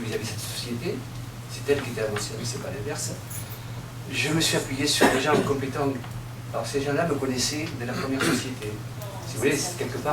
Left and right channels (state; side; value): identical; both; correlation 1.00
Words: vis-à-vis de cette société. C'est elle qui était à mon service, c'est pas l'inverse. Je me suis appuyé sur des gens compétents. Alors ces gens-là me connaissaient de la première société. Si vous voulez, quelque